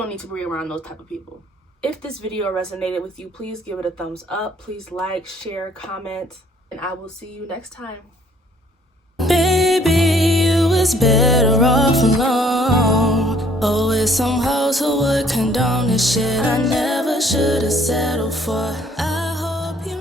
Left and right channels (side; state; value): both; normal; correlation 0.61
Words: need to be around those type of people. If this video resonated with you, please give it a thumbs up. Please like, share, comment, and I will see you next time. Baby, you was better off alone. Always some hoes who would condone this shit I never should have settled for.